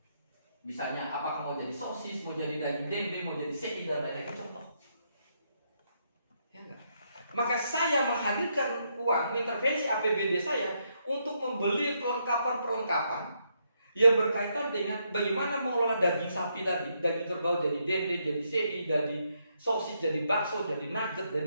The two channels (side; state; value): both; inverted; correlation -0.77